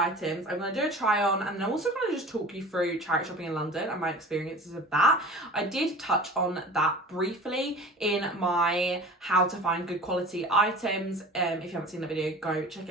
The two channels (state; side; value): normal; both; correlation 0.39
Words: I'm going to do a try on, and then I'm also going to just talk you through charity shopping in London and my experiences of that. I did touch on that briefly in my how to find good quality items. If you haven't seen the video, go check